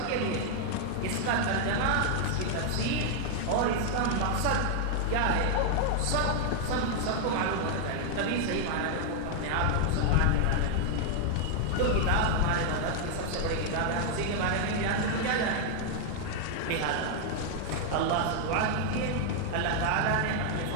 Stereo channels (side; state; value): both; different; correlation 0.00